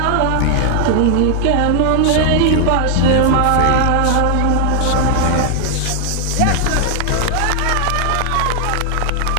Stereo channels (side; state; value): both; different; correlation 0.00